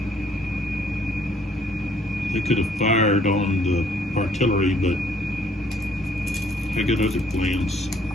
They could have fired on the artillery, but I got other plans.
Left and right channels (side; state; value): both; normal; correlation 0.63